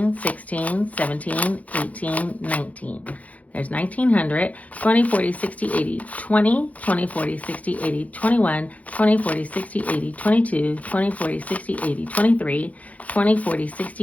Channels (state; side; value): late; right; 0.070 ms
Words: 16, 17, 18, 19. There's 1900, 20, 40, 60, 80, 20, 20, 40, 60, 80, 21, 20, 40, 60, 80, 22, 20, 40, 60, 80, 23, 20, 40,